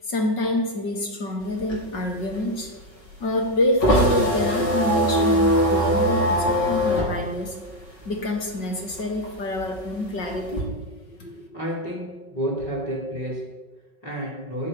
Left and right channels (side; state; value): right; late; 5.4 ms